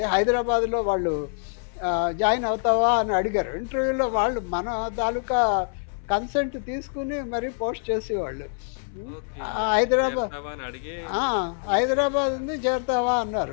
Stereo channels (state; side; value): silent; right; 62 dB below the other